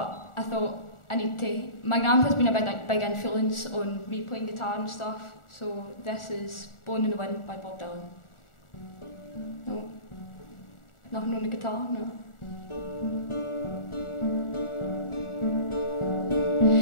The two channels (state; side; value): late; right; 1.4 ms